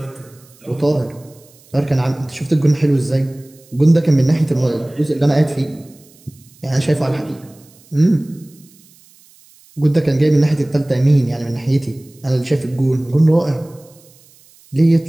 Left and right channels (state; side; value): noise; right; hiss, 28 dB below the sound